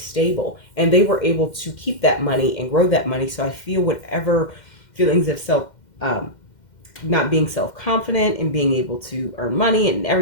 and they were able to keep that money and grow that money. So I feel whatever feelings of not being self-confident and being able to earn money and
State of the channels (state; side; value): late; right; 2.1 ms